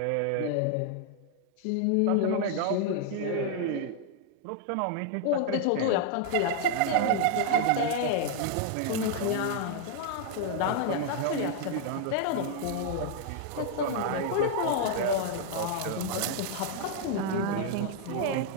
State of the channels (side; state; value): both; different; correlation -0.01